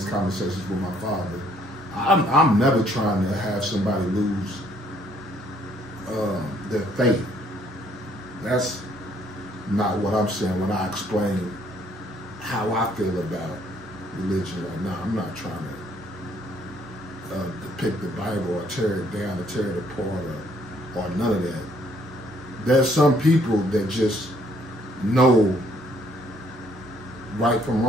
conversations with my father, I'm never trying to have somebody lose their faith. That's not what I'm saying when I explain how I feel about religion right now. I'm not trying to depict the Bible or tear it down or tear it apart or none of that. There's some people that just know right from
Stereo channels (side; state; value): both; normal; correlation 0.65